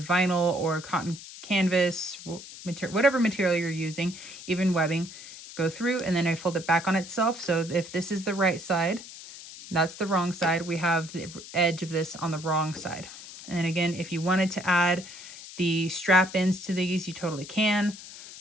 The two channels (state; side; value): noise; left; hiss, 14 dB below the sound